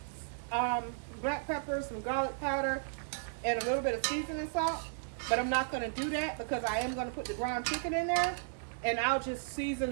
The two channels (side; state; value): left; silent; digital silence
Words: black pepper, some garlic powder, and a little bit of seasoning salt. But I'm not going to do that because I am going to put the ground chicken in there, and I'll just season